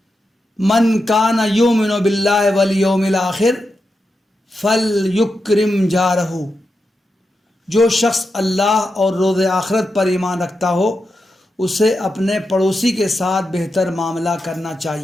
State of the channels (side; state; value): both; normal; correlation 0.88